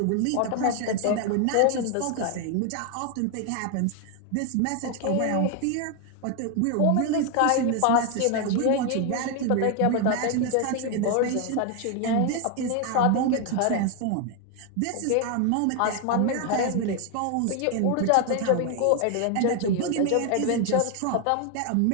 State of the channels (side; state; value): both; different; correlation 0.01